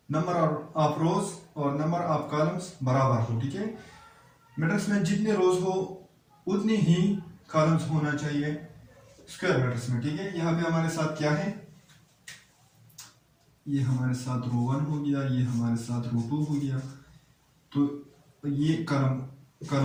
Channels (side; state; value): both; identical; correlation 1.00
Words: नंबर ऑफ रोज और नंबर ऑफ कॉलम्स बराबर हो, ठीक है। मैट्रिक्स में जितने रोज हो उतनी ही कॉलम्स होना चाहिए स्क्वायर मैट्रिक्स में, ठीक है। यहाँ पे हमारे साथ क्या है, ये हमारे साथ रो 1 हो गया, ये हमारे साथ रो 2 हो गया, तो ये कॉलम